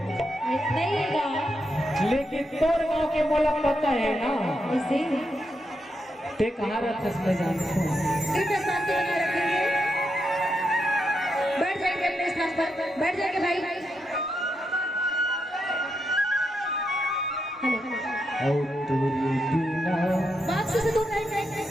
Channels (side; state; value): both; normal; correlation 0.83